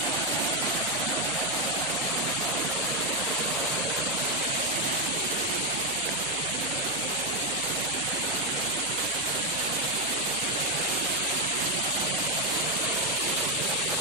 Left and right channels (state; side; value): noise; left; hum, 22 dB below the sound